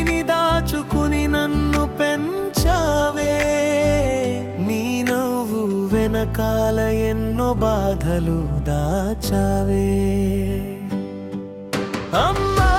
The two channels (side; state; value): both; identical; correlation 1.00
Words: దాచుకుని నన్ను పెంచావే, నీ నవ్వు వెనకాల ఎన్నో బాధలు దాచావే. అమ్మా